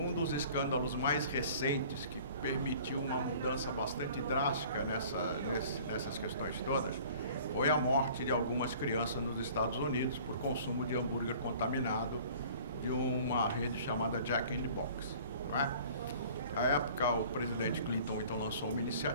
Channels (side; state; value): both; inverted; correlation -0.49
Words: dos escândalos mais recentes que permitiu uma mudança bastante drástica nessas questões todas foi a morte de algumas crianças nos Estados Unidos por consumo de hambúrguer contaminado de uma rede chamada Jack in the Box. Não é? Na época, o presidente Clinton então lançou uma